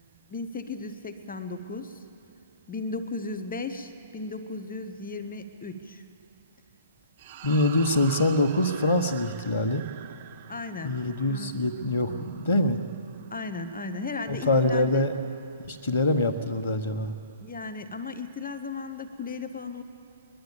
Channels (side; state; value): both; inverted; correlation -0.47